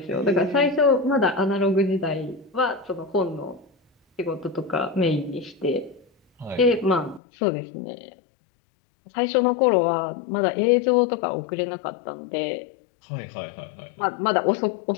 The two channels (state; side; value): drops out; right; at 7.2 s